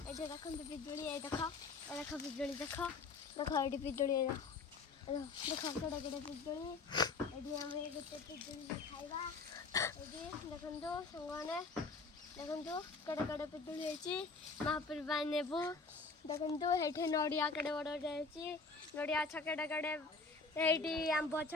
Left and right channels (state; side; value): quieter; right; 4.2 dB